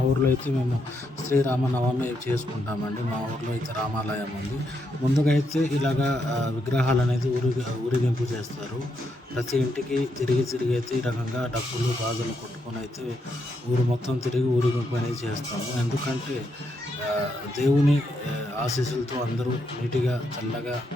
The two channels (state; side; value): normal; both; correlation 0.79